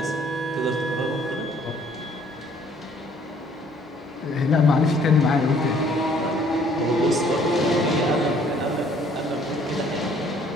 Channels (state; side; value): normal; both; correlation 0.60